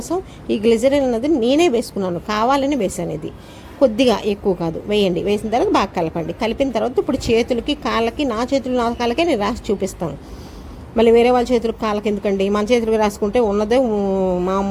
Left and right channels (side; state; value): both; identical; correlation 1.00